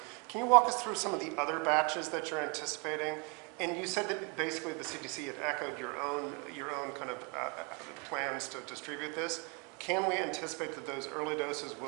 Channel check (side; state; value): left; quieter; 32.9 dB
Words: can you walk us through some of the other batches that you're anticipating? And you said that basically the CDC had echoed your own kind of plans to distribute this. Can we anticipate that those early doses